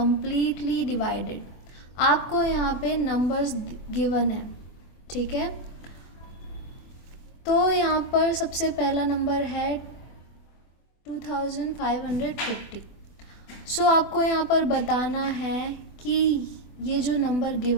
divided. आपको यहाँ पे numbers given है, ठीक है। तो यहाँ पर सबसे पहला नंबर है 2550। सो आपको यहाँ पर बताना है कि ये जो नंबर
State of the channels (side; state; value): right; late; 24 ms